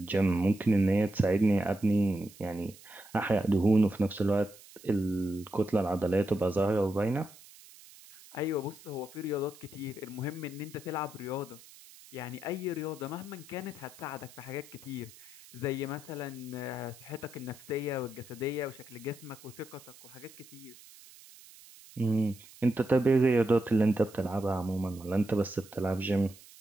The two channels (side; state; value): right; noise; hiss, 21 dB below the sound